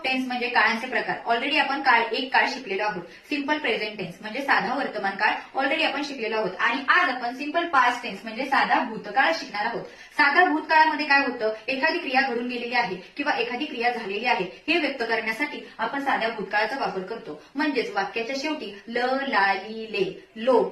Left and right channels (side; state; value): both; identical; correlation 1.00